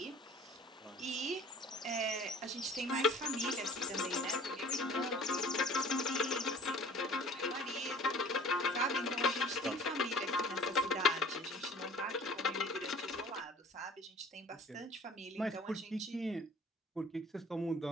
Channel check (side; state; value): both; normal; correlation 0.48